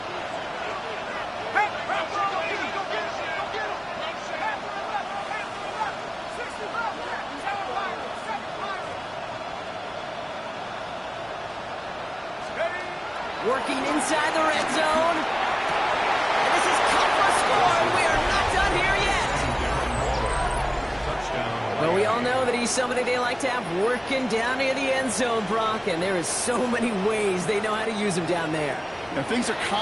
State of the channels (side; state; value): both; identical; correlation 1.00